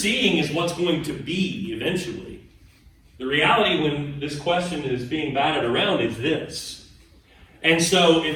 is what's going to be eventually. The reality when this question is being batted around is this. And so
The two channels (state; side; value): identical; both; correlation 1.00